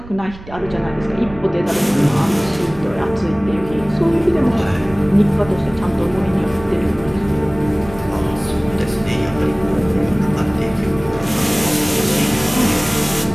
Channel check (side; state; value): right; noise; rumble, 17 dB below the sound